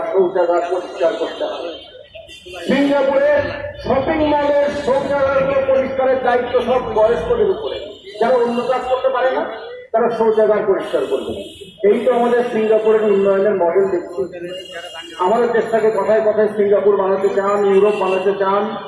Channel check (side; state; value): both; identical; correlation 1.00